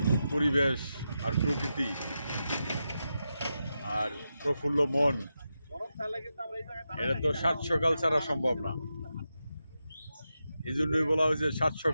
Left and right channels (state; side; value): inverted; both; correlation -0.89